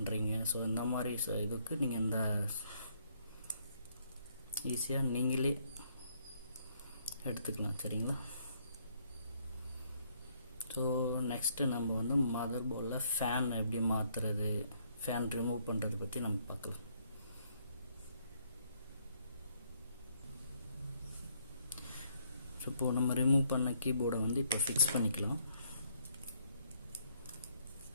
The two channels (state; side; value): inverted; both; correlation -0.69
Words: ஸோ இந்த மாதிரி இதுக்கு நீங்கள் இந்த ஈஸியாக நீங்களே எடுத்துக்கலாம், சரிங்களா? ஸோ நெக்ஸ்ட்டு நம்ம வந்து மதர் போர்டில் ஃபேன் எப்படி மாற்றுறது, ஃபேன் ரிமூவ் பண்ணுறது பற்றி நம்ம பார்க்கலாம். ஸோ இப்போது நம்ம ரிமூவ் பண்ண கீபோர்டை வந்து இப்போ ஃபிக்ஸ் பண்ணிக்கலாம்.